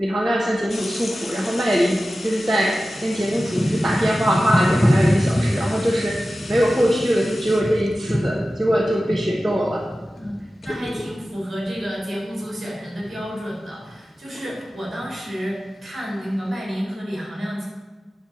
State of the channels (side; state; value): both; normal; correlation 0.95